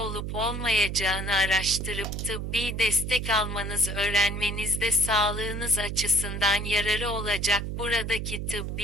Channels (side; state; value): right; noise; hum, 4 dB below the sound